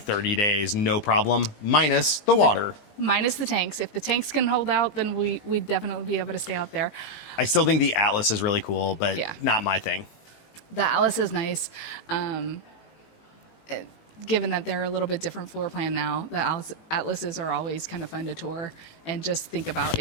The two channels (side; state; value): right; late; 18 ms